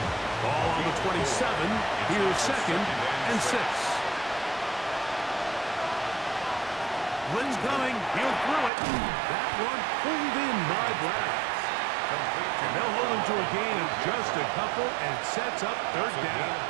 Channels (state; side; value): drops out; left; at 8.7 s